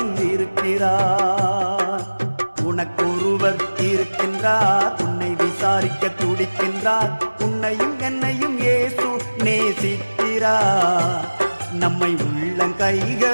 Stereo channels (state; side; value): inverted; both; correlation -1.00